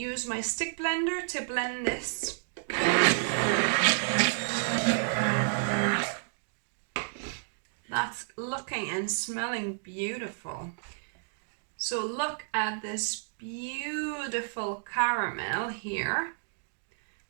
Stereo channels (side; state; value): left; silent; digital silence